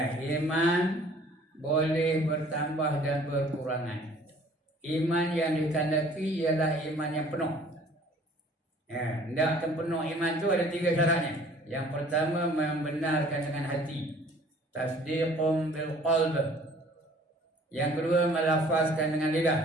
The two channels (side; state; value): both; normal; correlation 0.53